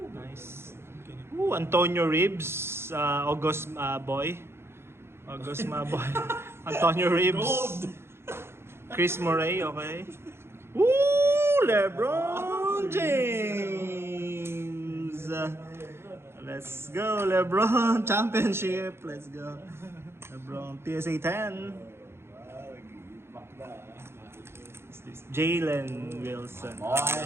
Nice. Ooh, Antonio Reeves. August boy. August boy. Antonio Reeves. Gold. Chris Murray, okay. Ooh, LeBron James. Let's go, LeBron. Championship. Let's go. LeBron, PSA 10. What's this? Jalen Wilson.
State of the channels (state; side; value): late; left; 0.12 ms